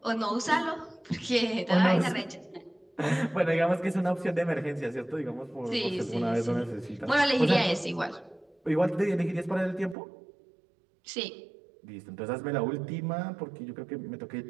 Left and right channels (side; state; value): left; drops out; at 10.0 s